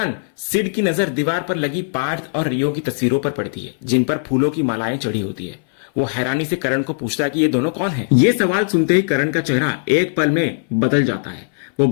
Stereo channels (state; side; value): silent; right; 61 dB below the other